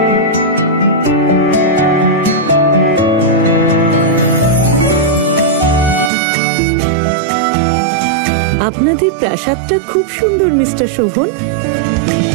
আপনাদের প্রাসাদটা খুব সুন্দর মিস্টার শোভন।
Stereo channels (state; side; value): drops out; left; at 6.1 s